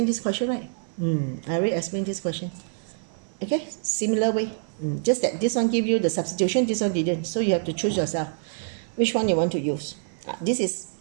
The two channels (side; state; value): left; silent; 57 dB below the other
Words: this question, right? I already explained this question. Okay, similar way. Just that this one give you the substitution, this one didn't. So you have to choose yourself which one you want to use. This is